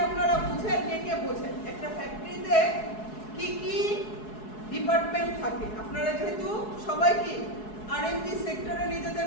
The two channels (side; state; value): right; late; 4.7 ms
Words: আপনারা বুঝেন? কে বোঝেন? একটা ফ্যাক্টরিতে কি কি ডিপার্টমেন্ট থাকে? আপনারা যেহেতু সবাই কি আরএমজি সেক্টরে